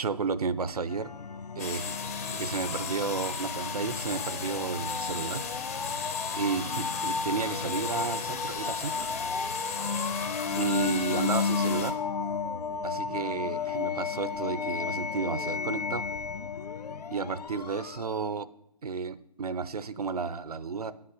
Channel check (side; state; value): both; normal; correlation -0.08